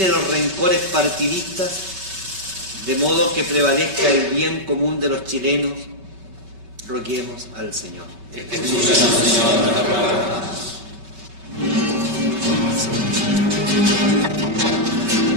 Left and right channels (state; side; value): late; left; 8.5 ms